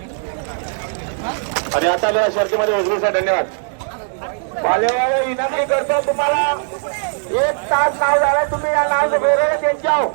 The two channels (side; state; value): left; silent; digital silence